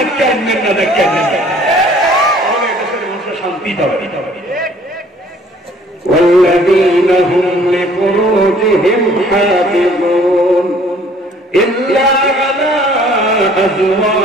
আনবেন না, দেখতে আনবেন না। তাহলে দেশের মানুষের শান্তি পাবে। والذين هم لفروجهم حافظون إلا على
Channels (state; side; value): normal; both; correlation 0.56